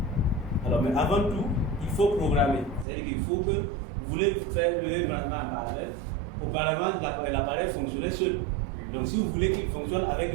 Alors, mais avant tout, il faut programmer. C'est-à-dire qu'il faut que vous voulez faire le branchement en parallèle. Auparavant, l'appareil fonctionnait seul. Donc, si vous voulez qu'il fonctionne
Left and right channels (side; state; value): left; drops out; at 2.9 s